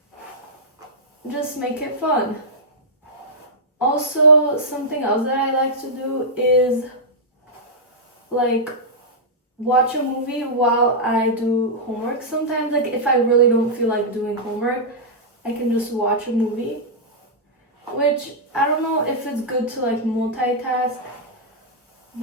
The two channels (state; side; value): normal; both; correlation -0.09